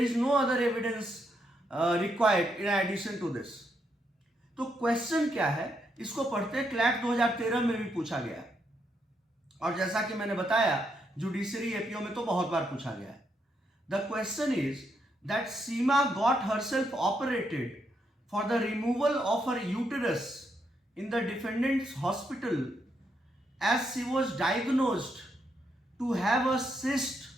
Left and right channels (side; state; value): both; normal; correlation 0.79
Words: is no other evidence required in addition to this. तो क्वेश्चन क्या है, इसको पढ़ते क्लैट 2013 में भी पूछा गया, और जैसा कि मैंने बताया जुडिशरी एपीओ में तो बहुत बार पूछा गया है. The question is that Seema got herself operated for the removal of her uterus in the defendant's hospital as she was diagnosed to have a cyst